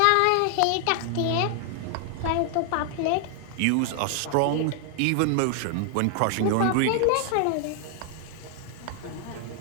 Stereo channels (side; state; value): both; different; correlation 0.00